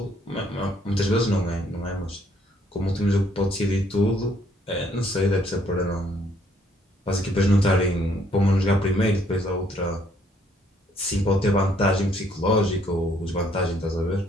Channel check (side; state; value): both; normal; correlation 0.66